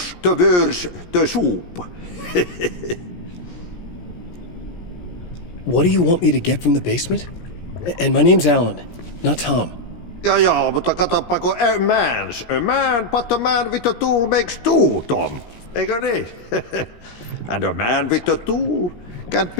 the worse the soup. What do you want me to get from the basement? And my name's Alan, not Tom. Ja, mutta katoppa, a man, but a man with a tool makes two, Tom. Eikö niin? And a man with a tool can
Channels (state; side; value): late; right; 17 ms